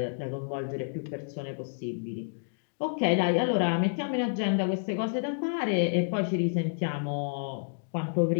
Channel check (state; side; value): silent; right; digital silence